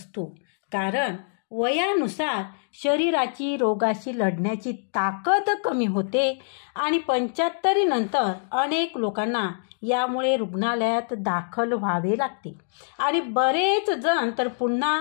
कारण वयानुसार शरीराची रोगाशी लढण्याची ताकद कमी होते आणि 75 नंतर अनेक लोकांना यामुळे रुग्णालयात दाखल व्हावे लागते आणि बरेच जण तर पुन्हा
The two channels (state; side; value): silent; right; digital silence